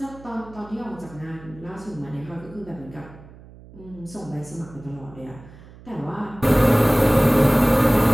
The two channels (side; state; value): right; noise; hum, 20 dB below the sound